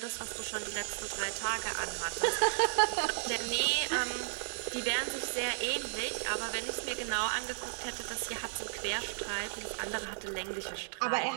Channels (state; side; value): silent; left; digital silence